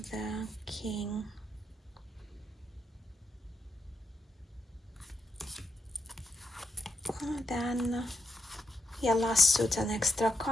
the king. And then yeah, last suit an extra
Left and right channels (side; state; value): both; normal; correlation 0.81